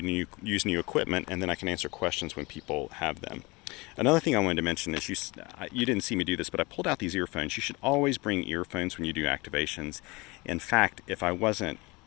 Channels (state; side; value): quieter; right; 24.9 dB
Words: to use new equipment, and then I can answer questions when people have them. Another thing I wanted to mention is you didn't see me do this, but I pulled out these earphones. You should always bring earphones when you do activations. In fact, if I